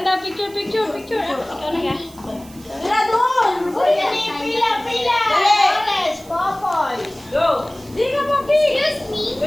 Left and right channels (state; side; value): noise; right; hiss, 22 dB below the sound